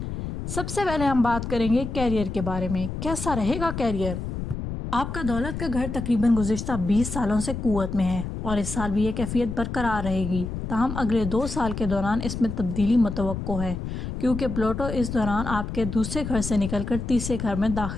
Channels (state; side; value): noise; left; rumble, 5 dB below the sound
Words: سب سے پہلے ہم بات کریں گے کیریئر کے بارے میں۔ کیسا رہے گا کیریئر؟ آپ کا دولت کا گھر تقریباً گزشتہ 20 سالوں سے قوت میں ہے اور اس سال بھی یہ کیفیت برقرار رہے گی، تاہم اگلے 2 سال کے دوران اس میں تبدیلی متوقع ہے کیونکہ پلوٹو اس دوران آپ کے دوسرے گھر سے نکل کر تیسرے گھر میں